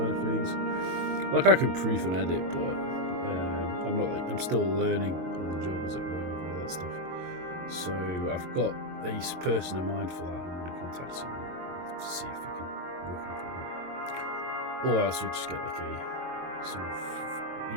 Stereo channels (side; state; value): left; late; 22 ms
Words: of things. Like, I can proof and edit, but I'm still learning on the job, as it were, with all that stuff. So I've got a person in mind for that, and I'm going to contact him to see if we can work anything out. Or else we just get like a sort